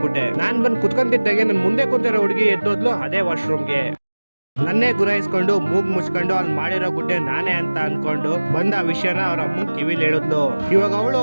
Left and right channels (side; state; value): both; inverted; correlation -1.00